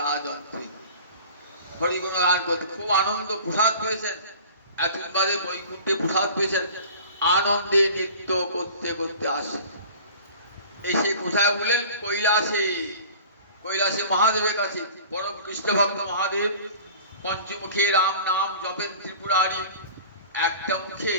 হরিগুণগান করতে খুব আনন্দ, প্রসাদ পেয়েছেন, এতদিন বাদে বৈকুণ্ঠে প্রসাদ পেয়েছেন, আনন্দে নৃত্য করতে করতে আসেন। এসে কোথায় বলেন? কৈলাসে। কৈলাসে মহাদেবের কাছে, পরম কৃষ্ণ ভক্ত মহাদেব পঞ্চমুখে রাম নাম জপেন ত্রিপুরারি। একটা মুখে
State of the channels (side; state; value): both; inverted; correlation -0.43